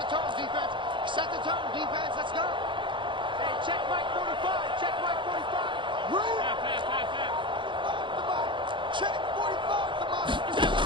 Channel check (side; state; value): left; late; 0.23 ms